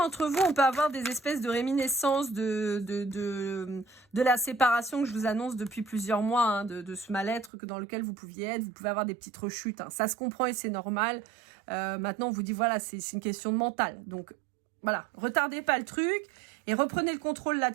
vous, on peut avoir des espèces de réminiscences de la séparation que je vous annonce depuis plusieurs mois, hein, de ce mal-être dans lequel vous pouviez être. Vous pouvez avoir des petites rechutes. Hein. Ça se comprend et c'est normal. Maintenant, on vous dit, voilà, c'est une question de mental. Donc, voilà, retardez pas le truc et reprenez le contrôle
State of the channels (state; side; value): drops out; left; at 7.5 s